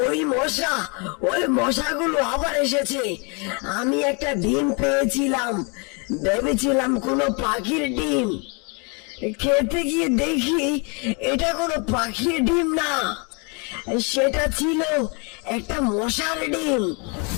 ওই মশাগুলো আবার এসেছে। আমি একটা ডিম পেয়েছিলাম, ভেবেছিলাম কোনো পাখির ডিম। খেতে গিয়ে দেখি এটা কোনো পাখির ডিম না, সেটা ছিল একটা মশার ডিম।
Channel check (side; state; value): right; quieter; 33.7 dB